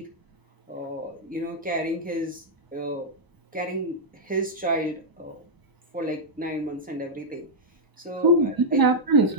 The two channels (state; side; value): normal; both; correlation -0.06